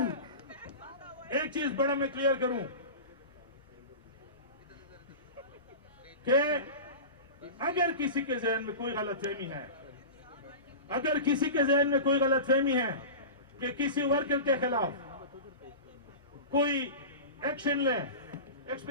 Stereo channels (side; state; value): both; inverted; correlation -0.30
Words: एक चीज बड़ा मैं क्लियर करूं कि अगर किसी के जहन में कोई गलतफहमी है, अगर किसी के जहन में कोई गलतफहमी है कि किसी वर्कर के खिलाफ कोई एक्शन ले,